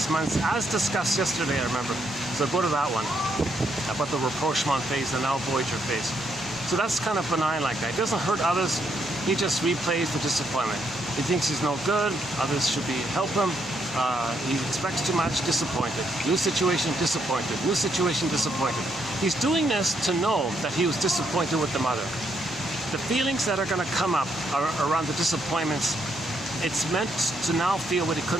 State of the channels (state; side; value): normal; both; correlation 0.75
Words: months, as discussed yesterday, I remember. So go to that one, about the rapprochement phase, the now voyager phase. So that's kind of benign like that. He doesn't hurt others, he just replays the disappointment. He thinks he's no good, others should help him. He expects too much, disappointed. New situation, disappointed. New situation, disappointed. He's doing this to know that he was disappointed with the mother. The feelings that are going to come up around the disappointments, it's meant to now feel what he